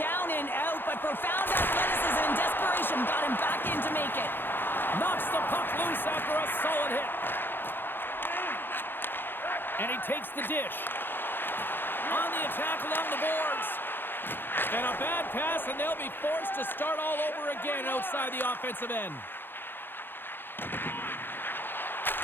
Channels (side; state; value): right; late; 0.10 ms